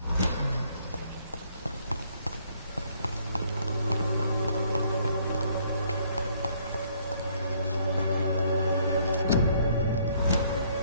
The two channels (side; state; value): both; inverted; correlation -0.65